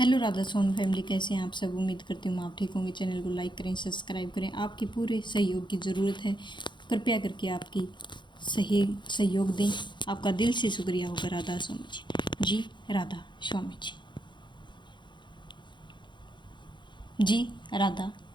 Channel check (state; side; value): late; right; 0.23 ms